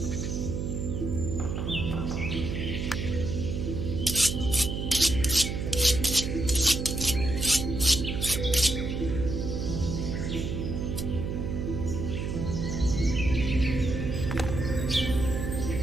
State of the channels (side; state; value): right; noise; hum, 2 dB below the sound